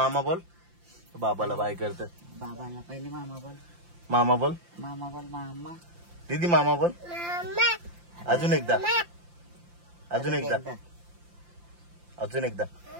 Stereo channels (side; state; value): left; late; 5.8 ms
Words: बोल. बाबाला बाय करत. बाबाला पहिले मामा बोल. मामा बोल. मामा बोल. मामा दीदी मामा बोल. अजून एकदा. अजून एकदा. अजून एकदा.